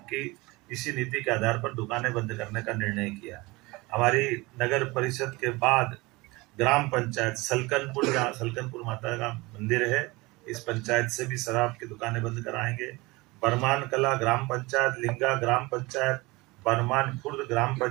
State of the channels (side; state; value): left; quieter; 22.9 dB